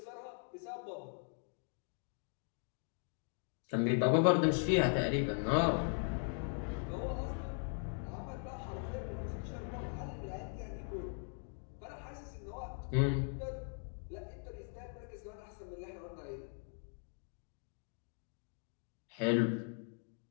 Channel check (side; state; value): right; silent; 51 dB below the other